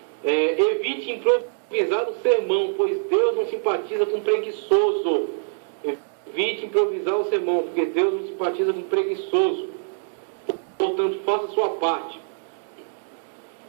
Evite improvisar o sermão, pois Deus não simpatiza com preguiçoso. Evite improvisar o sermão, porque Deus não simpatiza com preguiçoso. Portanto, faça a sua parte.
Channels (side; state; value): left; silent; digital silence